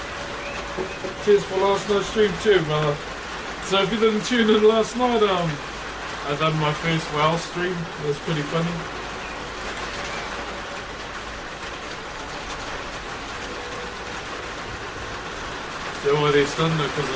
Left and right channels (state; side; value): identical; both; correlation 1.00